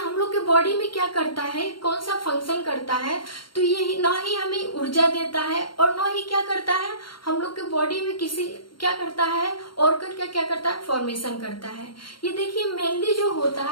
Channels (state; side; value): late; right; 0.73 ms